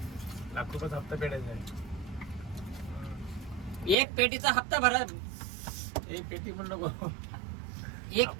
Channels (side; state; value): left; drops out; at 4.0 s